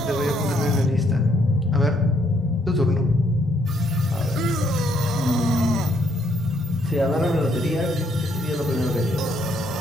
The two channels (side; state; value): both; normal; correlation 0.71